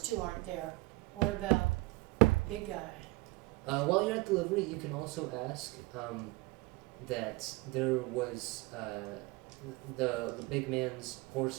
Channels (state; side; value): quieter; left; 22.4 dB